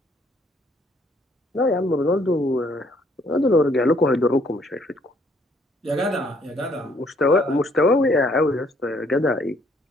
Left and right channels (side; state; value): both; normal; correlation 0.66